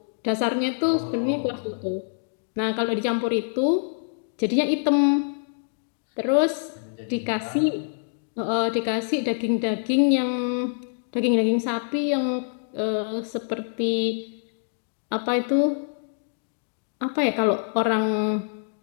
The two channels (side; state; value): right; silent; digital silence